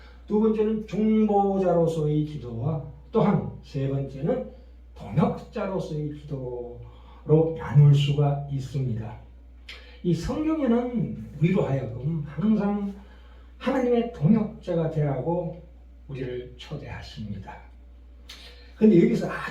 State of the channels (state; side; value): identical; both; correlation 1.00